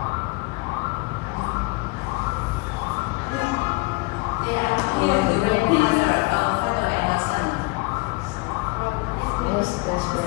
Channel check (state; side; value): quieter; right; 25.5 dB